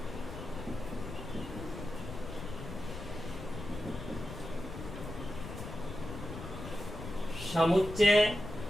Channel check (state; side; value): noise; left; rumble, 9 dB below the sound